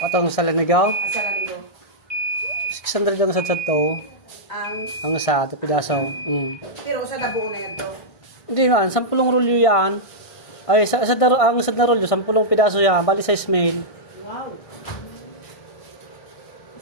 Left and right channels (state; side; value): late; right; 1.6 ms